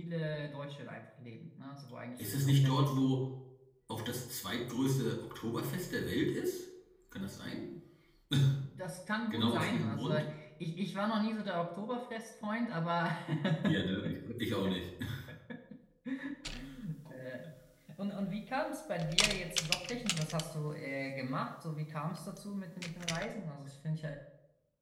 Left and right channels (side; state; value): both; identical; correlation 1.00